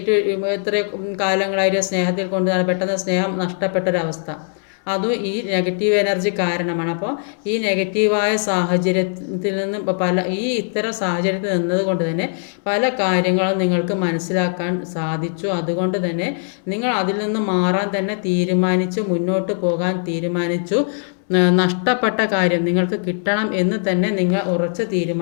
എത്ര കാലങ്ങളായിട്ട് സ്നേഹത്തിൽ കൊണ്ടുവന്നാൽ പെട്ടെന്ന് സ്നേഹം നഷ്ടപ്പെട്ടൊരവസ്ഥ, അതും ഈ നെഗറ്റീവ് എനർജി കാരണമാണ്. അപ്പോൾ ഈ നെഗറ്റീവായ സാഹചര്യത്തിൽ നിന്ന് ഇത്തരം സാഹചര്യത്തിൽ നിന്നത് കൊണ്ട് തന്നെ പല കാര്യങ്ങളും നിങ്ങൾക്ക് മനസ്സിലാക്കാൻ സാധിച്ചു. അതുകൊണ്ട് തന്നെ നിങ്ങൾ അതിൽ നിന്ന് മാറാൻ തന്നെ തീരുമാനിച്ചു, മുന്നോട്ട് പോകാൻ തീരുമാനിച്ചു. നഷ്ടപ്പെട്ട കാര്യം നിങ്ങൾക്ക് കിട്ടണം എന്ന് തന്നെ നിങ്ങൾ ഉറച്ച്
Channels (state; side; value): silent; right; digital silence